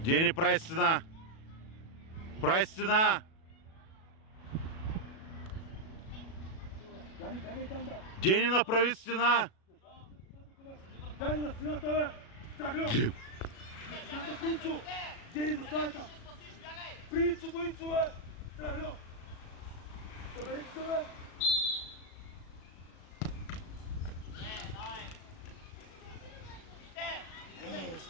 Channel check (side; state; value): right; late; 37 ms